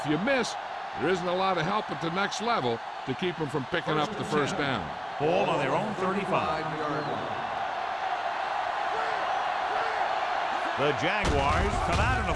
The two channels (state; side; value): identical; both; correlation 1.00